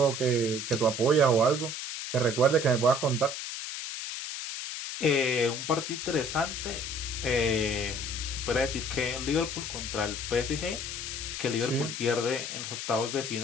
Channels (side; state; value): left; noise; hiss, 6 dB below the sound